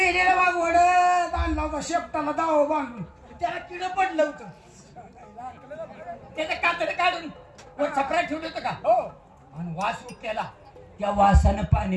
वाघ वडत आणला होता शेपटाला दाव बांधून त्याला किड पडलं होतं त्याचं कातड काढून छपरा ठेवलं होतं का हो आणि वास उठल्याला त्या वासानं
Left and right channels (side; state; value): both; identical; correlation 1.00